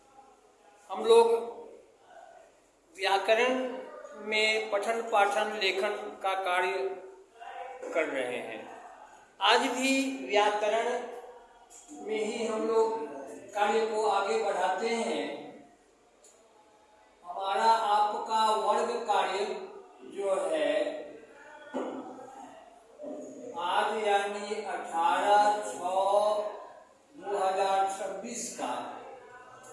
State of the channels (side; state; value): both; identical; correlation 1.00